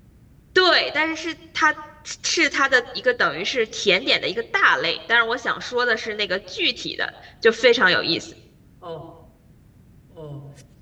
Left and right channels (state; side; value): identical; both; correlation 1.00